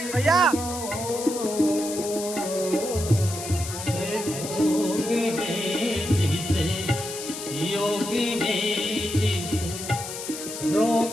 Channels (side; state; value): left; noise; hiss, 8 dB below the sound